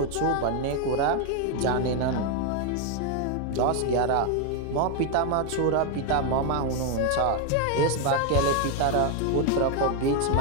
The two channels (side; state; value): both; different; correlation 0.01